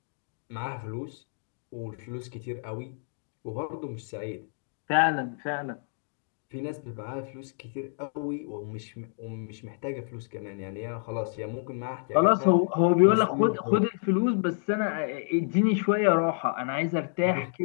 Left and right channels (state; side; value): silent; right; digital silence